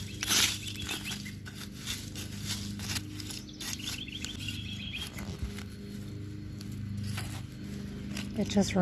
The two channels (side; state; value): both; identical; correlation 1.00